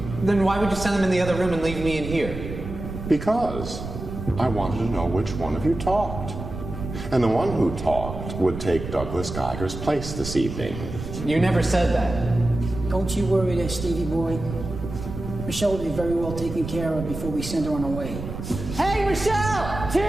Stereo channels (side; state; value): right; noise; rumble, 8 dB below the sound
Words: Then why would you send them in the other room and leave me in here? Because I wanted to know which one of you talked. And the one who talked would take Douglas Geiger's place this evening. You never said that. Don't you worry there, Stevie boy. Michelle will be very well taken care of before we send her on her way. Hey, Michelle!